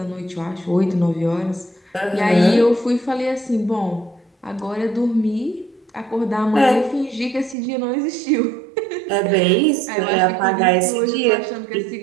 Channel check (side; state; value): left; drops out; at 7.6 s